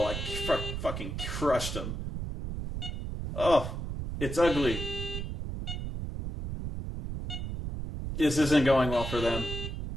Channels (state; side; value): noise; right; rumble, 5 dB below the sound